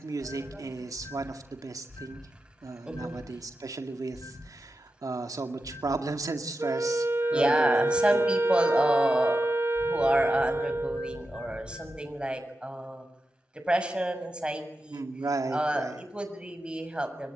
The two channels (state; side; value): normal; both; correlation 0.90